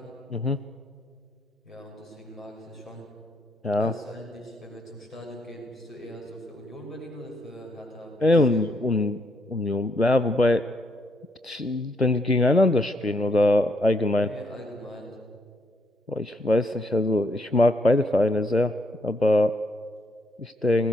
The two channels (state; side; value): normal; both; correlation 0.73